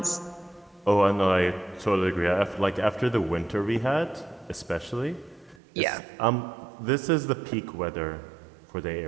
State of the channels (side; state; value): left; drops out; at 5.6 s